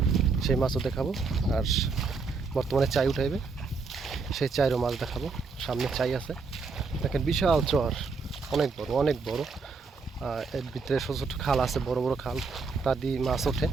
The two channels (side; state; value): left; quieter; 4.5 dB